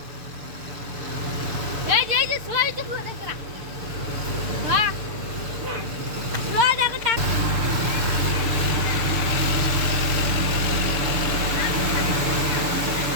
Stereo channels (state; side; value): late; left; 6.6 ms